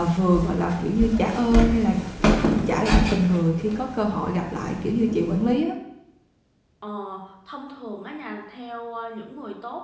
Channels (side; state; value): both; identical; correlation 1.00